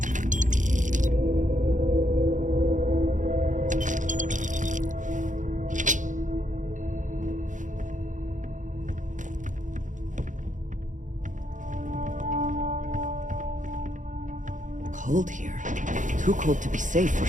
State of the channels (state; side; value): late; left; 0.37 ms